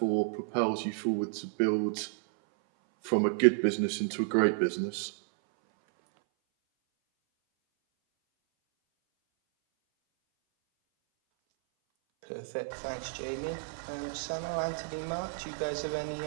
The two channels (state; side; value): silent; left; 57 dB below the other